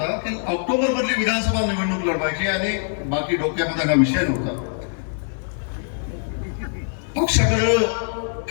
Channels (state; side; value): silent; right; digital silence